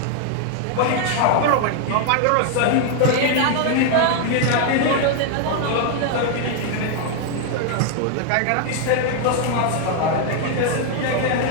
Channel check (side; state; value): both; different; correlation 0.00